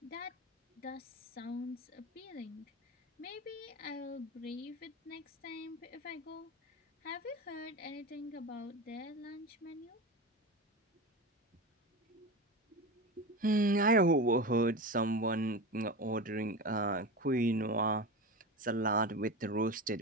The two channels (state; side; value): normal; both; correlation 0.25